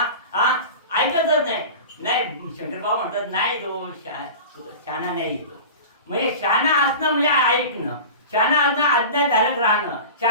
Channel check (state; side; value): inverted; both; correlation -0.33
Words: ऐकतच नाही. नाही, शंकर बाबा म्हणतात नाही तो शहाणा नाही. तो म्हणजे शहाणा असणं म्हणजे ऐकणं, शहाणा असणं आज्ञाधारक राहणं,